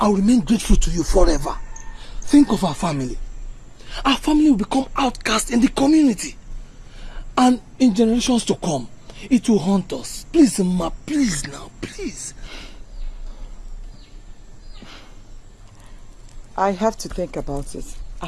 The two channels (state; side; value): identical; both; correlation 1.00